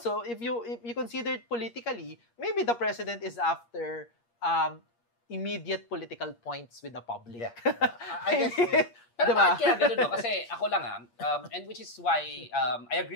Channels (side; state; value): right; late; 8.5 ms